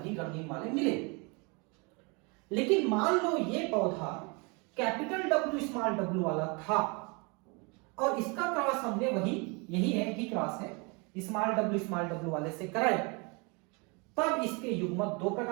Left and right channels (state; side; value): quieter; left; 30.7 dB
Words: रंगीन वाले मिले। लेकिन मान लो ये पौधा कैपिटल डब्ल्यू स्मॉल डब्ल्यू वाला था और इसका क्रॉस हमने वही, यही है कि क्रॉस है, स्मॉल डब्ल्यू वाले से कराया, तब इसके युग्मक दो